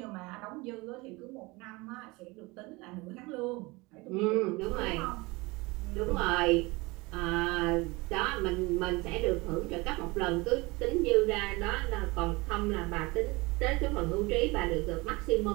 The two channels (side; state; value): left; quieter; 24.0 dB